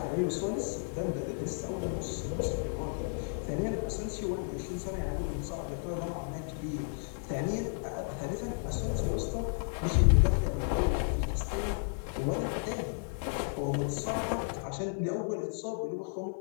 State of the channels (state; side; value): silent; right; 56 dB below the other